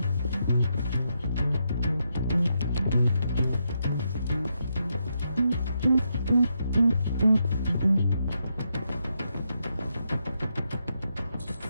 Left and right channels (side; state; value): both; inverted; correlation -0.81